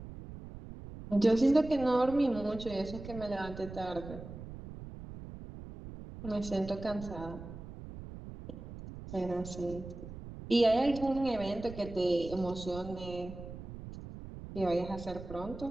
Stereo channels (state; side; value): noise; right; rumble, 12 dB below the sound